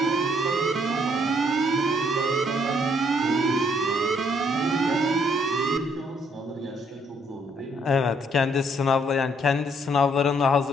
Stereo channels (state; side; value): normal; both; correlation 0.68